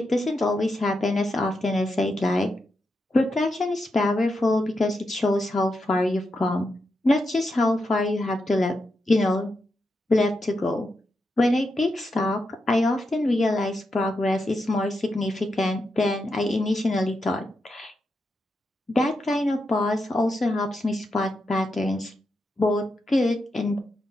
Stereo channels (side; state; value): both; normal; correlation 0.85